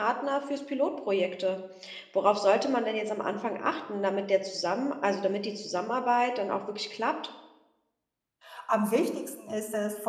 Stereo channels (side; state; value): both; identical; correlation 1.00